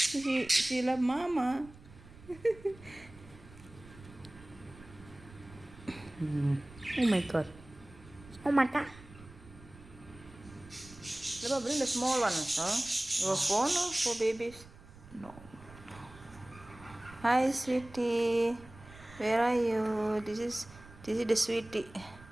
love mama. Oh my god. Oh my god. Let me bring the small one, huh? Your phone for babies? No. Hi, sweetie. Where are you? This is the sweetie,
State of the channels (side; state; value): right; noise; rumble, 20 dB below the sound